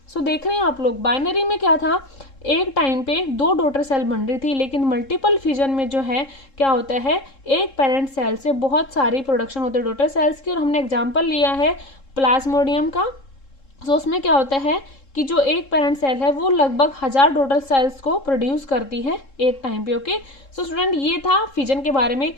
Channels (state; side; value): late; right; 3.7 ms